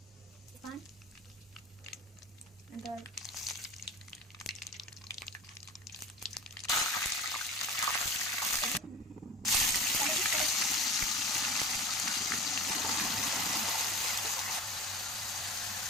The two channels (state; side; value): normal; both; correlation 0.35